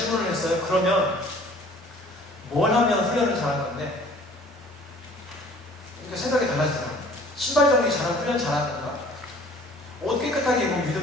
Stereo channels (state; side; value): normal; both; correlation 0.51